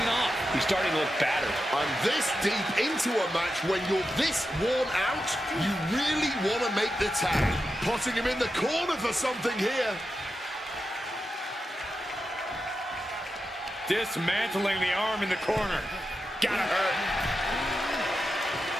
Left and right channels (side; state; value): both; normal; correlation 0.89